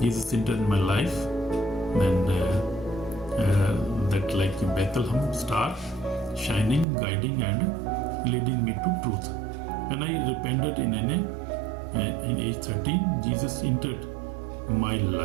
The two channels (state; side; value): drops out; left; at 6.9 s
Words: Jesus entered my life, and that like a Bethlehem star, shining, guiding, and leading me to truth. When I repented in age 13, Jesus entered my